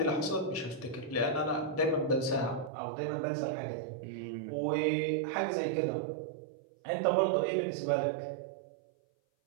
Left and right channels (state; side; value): drops out; left; at 2.7 s